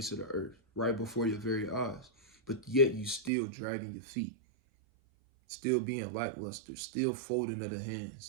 of the earth right before your very eyes, but yet you still dragging your feet, still being lackluster, still folding of the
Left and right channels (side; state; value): left; drops out; at 3.3 s